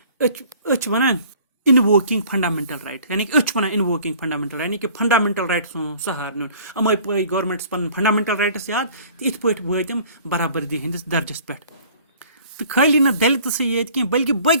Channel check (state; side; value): inverted; both; correlation -0.51